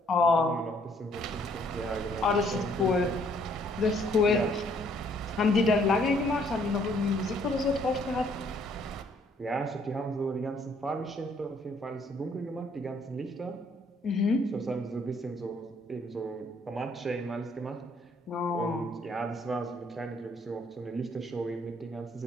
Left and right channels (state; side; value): normal; both; correlation 0.65